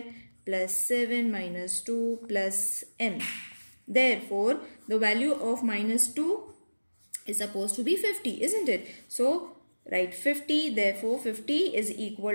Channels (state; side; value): inverted; both; correlation -1.00